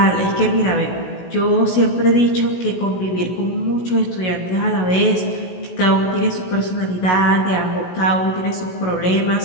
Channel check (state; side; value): late; right; 16 ms